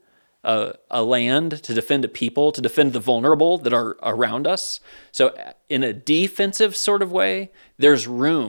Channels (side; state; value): both; inverted; correlation -1.00